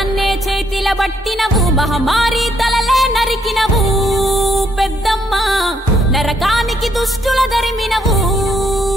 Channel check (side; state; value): both; normal; correlation 0.72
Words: చేతిల పట్టినవు మహమారి తలలే నరికినవు పెద్దమ్మ నరకానికి దుష్టుల దరిమినవు